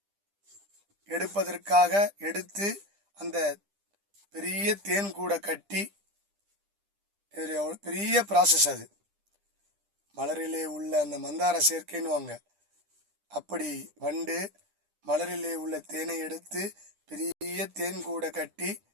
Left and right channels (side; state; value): left; late; 10 ms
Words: எடுப்பதற்காக எடுத்து அந்த பெரிய தேன் கூட கட்டி, பெரிய ப்ராசஸ் அது. மலரிலே உள்ள அந்த மந்தார சேர்க்கைன்னு அப்படி வண்டு மலரிலே உள்ள தேனை எடுத்து பெரிய தேன் கூட கட்டி,